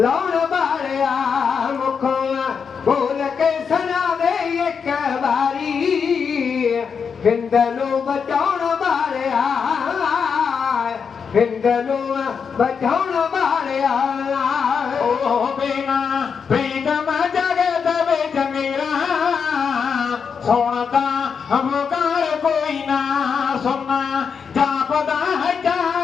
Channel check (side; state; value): right; quieter; 6.3 dB